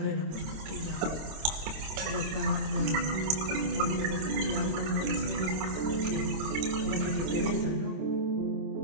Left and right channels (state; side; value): late; left; 26 ms